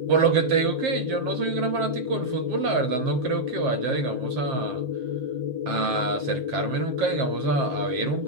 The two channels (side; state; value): left; late; 7.6 ms